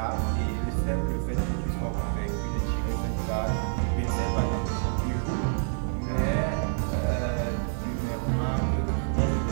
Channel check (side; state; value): left; silent; 60 dB below the other